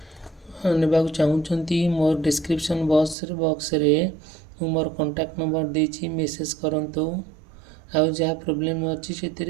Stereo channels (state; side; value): drops out; left; at 3.2 s